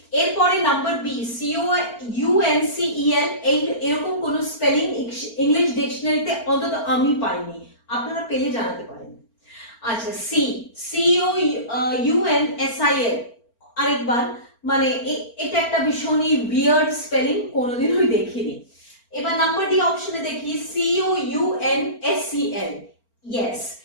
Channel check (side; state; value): right; late; 4.4 ms